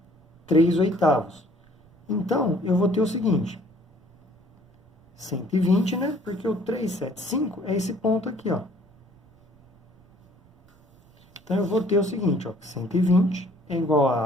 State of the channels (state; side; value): noise; right; rumble, 30 dB below the sound